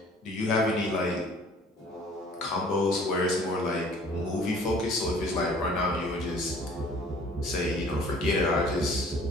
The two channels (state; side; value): normal; both; correlation 0.53